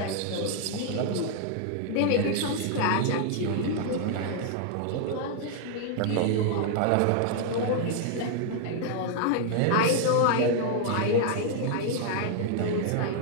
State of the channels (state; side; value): different; both; correlation 0.00